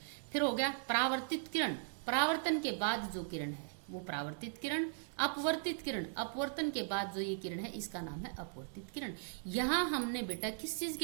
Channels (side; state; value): left; silent; digital silence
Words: फिर हो गया परावर्तित किरण, परावर्तन के बाद जो किरण है वो परावर्तित किरण। अपवर्तित किरण, अपवर्तन के बाद जो ये किरण है इसका नाम है अपवर्तित किरण। यहाँ हमने बेटा किस चीज